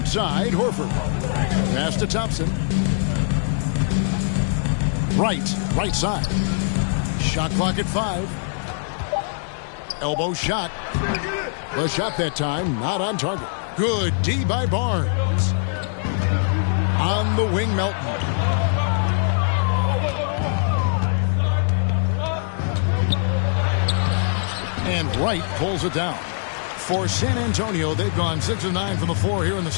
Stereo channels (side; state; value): right; silent; digital silence